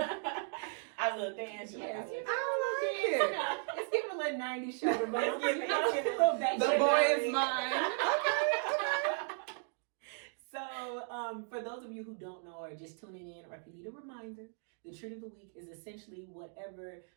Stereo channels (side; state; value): left; silent; 54 dB below the other